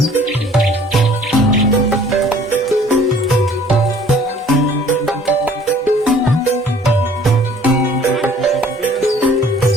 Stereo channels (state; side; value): normal; both; correlation 0.54